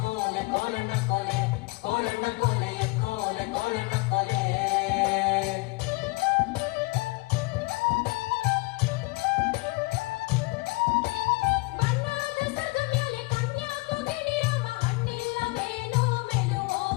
ಕೋಲಣ್ಣ ಕೋಲೆ ಕೋಲಣ್ಣ ಕೋಲೆ ಎಕ್ಕೋಲೆ ಕೋಲಣ್ಣ ಕೋಲೆ ಬಣ್ಣದ ಸದ ಮೇಲೆ ಕನ್ಯಾಕು ಗಿಣಿರವ ಹಣ್ಣಿಲ್ಲ ಮೇನೋ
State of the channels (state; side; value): quieter; right; 25.6 dB